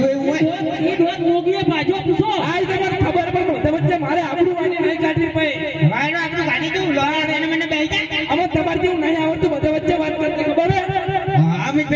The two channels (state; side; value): identical; both; correlation 1.00